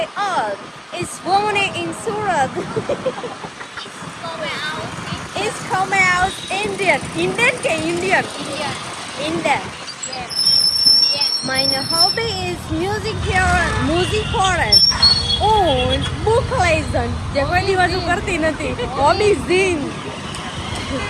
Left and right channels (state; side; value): identical; both; correlation 1.00